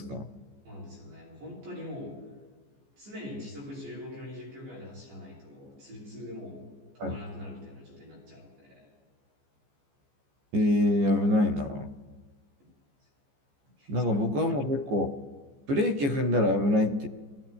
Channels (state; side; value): late; left; 14 ms